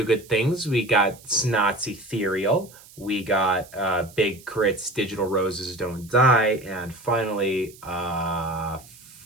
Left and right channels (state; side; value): noise; right; hiss, 22 dB below the sound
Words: Good Things. We got Snot's Ethereal. We got Big K.R.I.T's Digital Roses Don't Die. And finally,